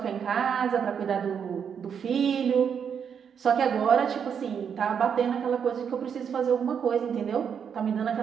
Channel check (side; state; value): left; quieter; 7.4 dB